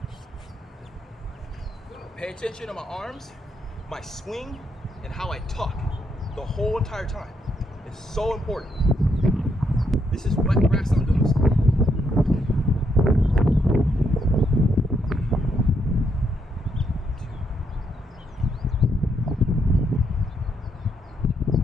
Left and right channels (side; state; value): both; normal; correlation 0.76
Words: Pay attention to my arms, my swing, and how I tuck the whole entire time. It's so important. This is wet grass I'm doing this.